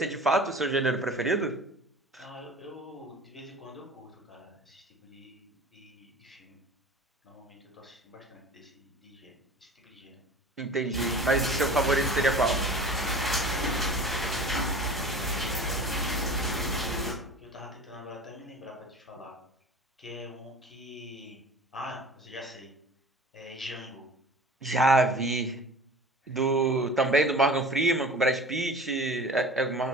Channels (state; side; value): normal; both; correlation 0.40